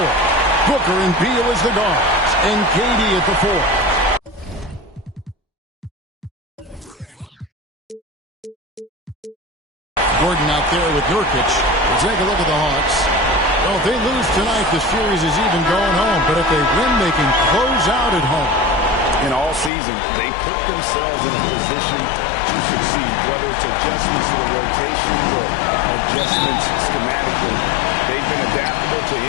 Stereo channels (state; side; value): drops out; right; at 19.7 s